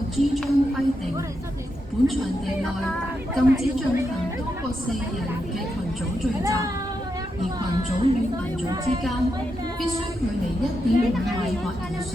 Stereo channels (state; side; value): normal; both; correlation 0.84